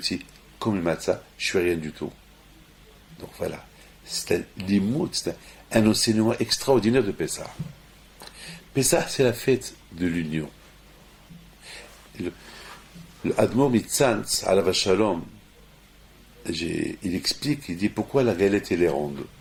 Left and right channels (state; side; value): identical; both; correlation 1.00